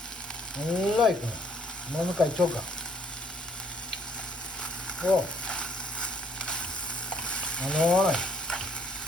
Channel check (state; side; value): normal; both; correlation 0.65